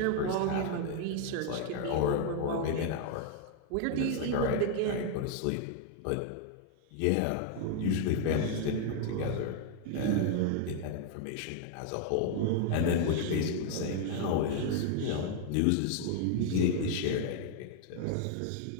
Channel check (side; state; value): both; different; correlation 0.00